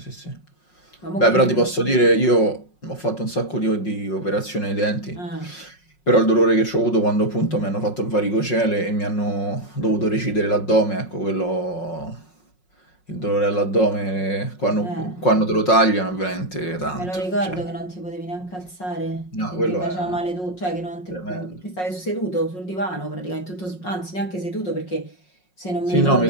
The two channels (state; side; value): late; right; 5.5 ms